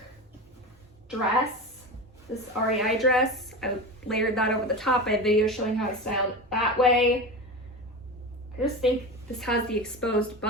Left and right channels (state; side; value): normal; both; correlation 0.26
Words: dress, this REI dress. I layered that over the top. I have videos showing how I styled it that way. I just think this has the exposed